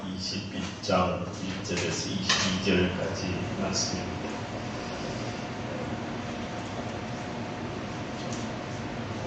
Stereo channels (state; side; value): identical; both; correlation 1.00